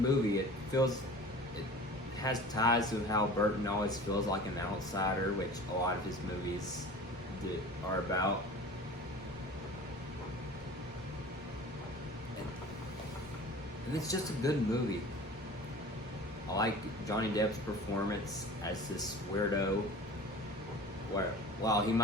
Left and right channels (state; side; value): normal; both; correlation 0.40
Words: It has ties to how Burton always feels like an outsider, which a lot of his movies are about. And it's just a good movie. I like Johnny Depp's performance as this weirdo, where while he